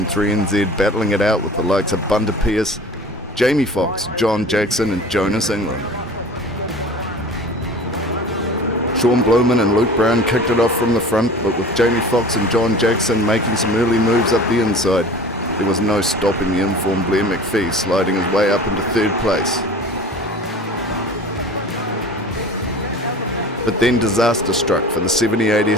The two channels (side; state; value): both; normal; correlation 0.41